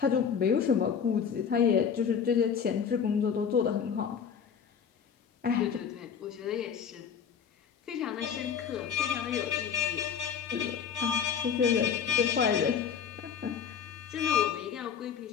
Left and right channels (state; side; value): quieter; right; 7.2 dB